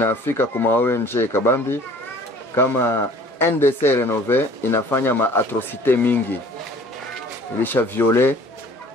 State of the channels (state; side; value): normal; both; correlation 0.51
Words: kuma ONG Kabambi kama NDC Renové inafanya ma atrocité mingi, ilisha viole,